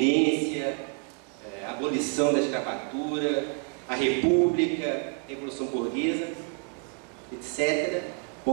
a abolição da escravatura, a república, a revolução burguesa, etc.,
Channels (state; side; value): quieter; left; 36.6 dB